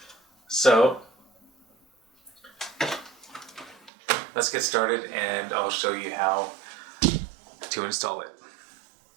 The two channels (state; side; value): drops out; left; at 3.9 s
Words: So let's get started and I'll show you how to install it.